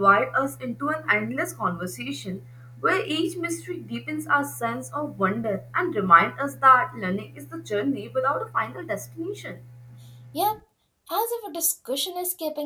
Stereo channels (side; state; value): both; identical; correlation 1.00